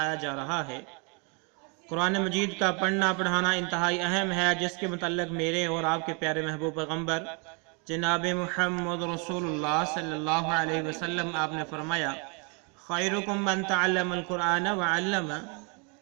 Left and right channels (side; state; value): left; quieter; 34.8 dB